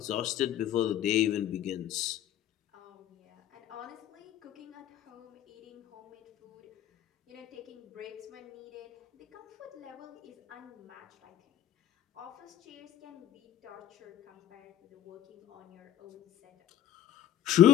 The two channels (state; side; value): quieter; right; 11.6 dB